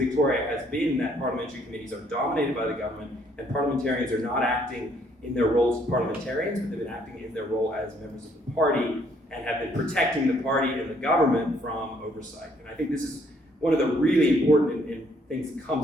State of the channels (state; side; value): normal; both; correlation 0.67